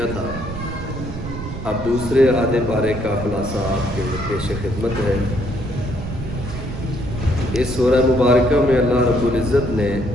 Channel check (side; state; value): right; noise; rumble, 7 dB below the sound